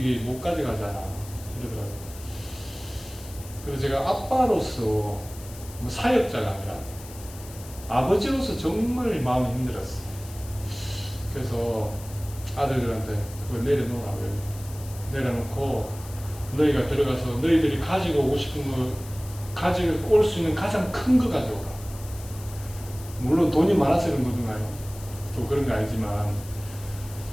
못 가져가잖아 이러더라고요. 그래서 제가 아빠로서 뭐 사역자가 아니라 아버지로서 정말 마음이 힘들었어요. 그래서 아들들한테 그걸 내려놓으라고요. 내려놓고 너희가 들어가서 너희들이 가지고 오고 싶은 거 가지고 올 수 있는 가장 큰 거 가져오라. 물론 돈이 많아서 그런 거든가요? 또 그런 거 아니지만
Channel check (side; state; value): left; noise; hiss, 17 dB below the sound